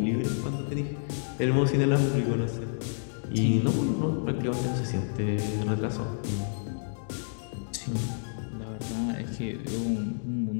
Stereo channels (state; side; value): silent; right; digital silence